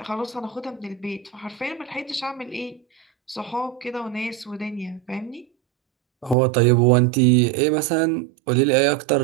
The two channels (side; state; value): left; drops out; at 6.4 s